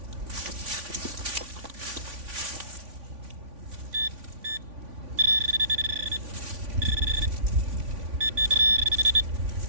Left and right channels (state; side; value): late; left; 3.5 ms